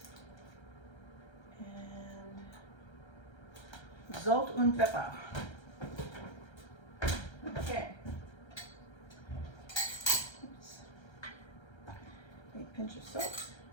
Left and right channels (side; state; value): right; late; 1.3 ms